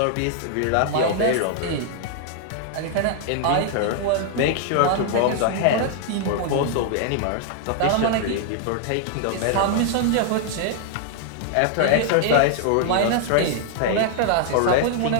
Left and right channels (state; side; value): different; both; correlation 0.00